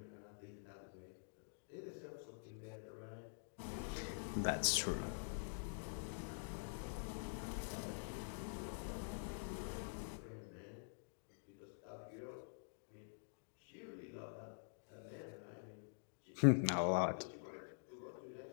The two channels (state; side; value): silent; right; digital silence